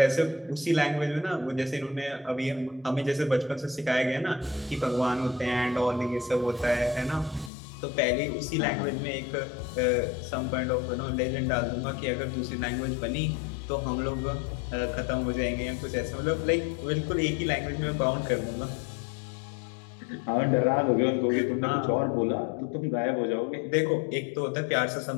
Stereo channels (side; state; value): right; drops out; at 7.5 s